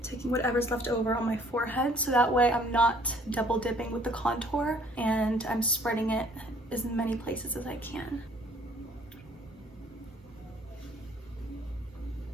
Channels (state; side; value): normal; both; correlation 0.58